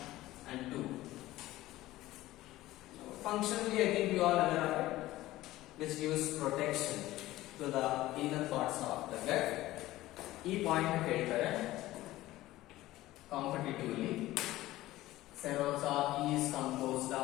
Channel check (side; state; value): right; quieter; 16.5 dB